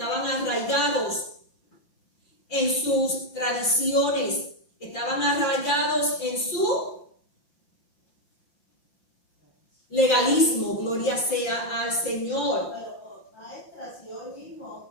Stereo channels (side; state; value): right; late; 5.8 ms